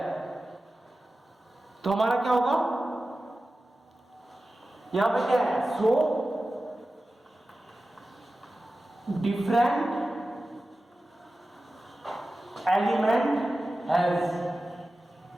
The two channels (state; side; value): normal; both; correlation 0.95